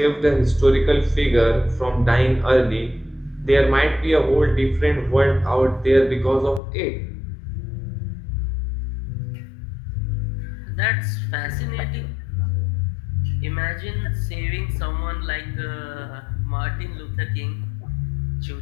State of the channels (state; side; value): drops out; right; at 6.6 s